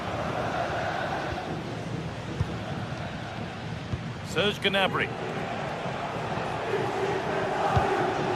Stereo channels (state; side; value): identical; both; correlation 1.00